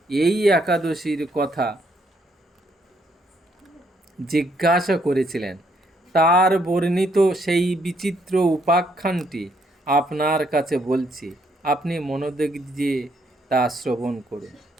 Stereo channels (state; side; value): normal; both; correlation 0.72